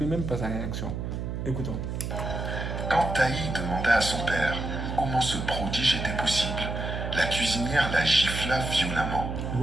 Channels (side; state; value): right; noise; hum, 4 dB below the sound